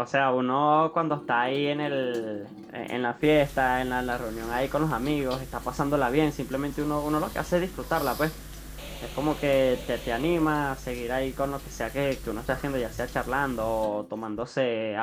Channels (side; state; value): both; identical; correlation 1.00